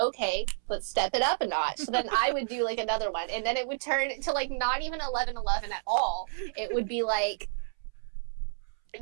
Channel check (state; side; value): silent; left; 58 dB below the other